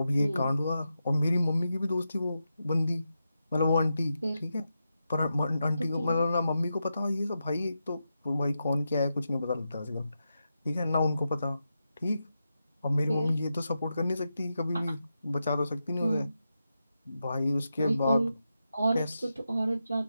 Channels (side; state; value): both; inverted; correlation -0.88